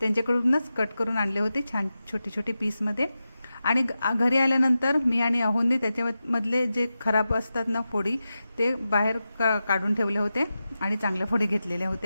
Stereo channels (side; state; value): both; inverted; correlation -0.92